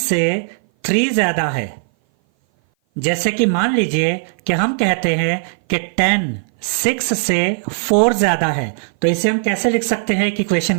3 ज्यादा है। जैसे कि मान लीजिए कि हम कहते हैं कि 10 6 से 4 ज्यादा है, तो इसे हम कैसे लिख सकते हैं एक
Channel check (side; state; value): left; silent; 57 dB below the other